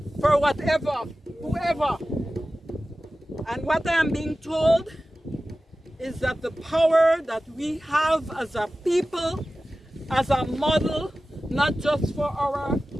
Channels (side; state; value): both; normal; correlation 0.95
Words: for whatever, whoever. And what I am being told is that the power that we have as a people, as a model, not just for our